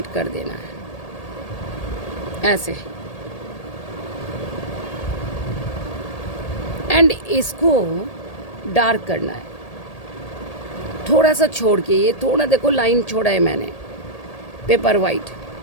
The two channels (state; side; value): late; right; 1.8 ms